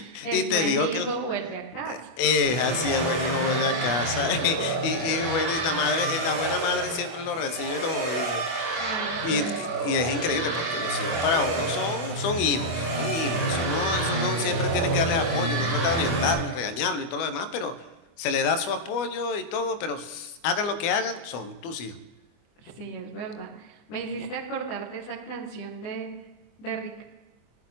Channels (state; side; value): late; right; 24 ms